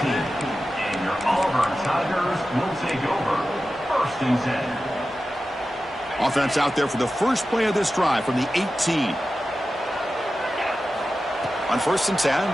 your Auburn Tigers will take over. First and 10. Offense out there for the first play of this drive from the 18. On first and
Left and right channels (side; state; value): both; normal; correlation 0.93